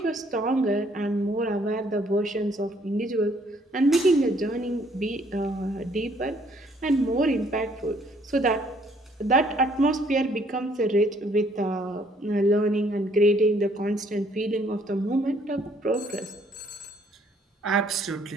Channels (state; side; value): normal; both; correlation 0.64